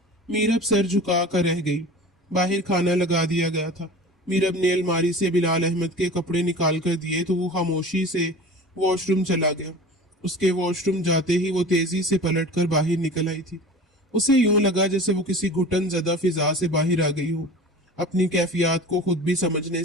मीरब सर झुका कर रह गई। बाहर खाना लगा दिया गया था। मीरब ने अलमारी से बिलाल अहमद के कपड़े निकाल कर दिए तो वो खामोशी से वॉशरूम चला गया। उसके वॉशरूम जाते ही वो तेजी से पलटकर बाहर निकल आई थी। उसे यूं लगा जैसे वो किसी घुटन ज़दा फिजा से बाहर आ गई हो। अपनी कैफियत को खुद भी समझने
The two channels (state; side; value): normal; both; correlation 0.37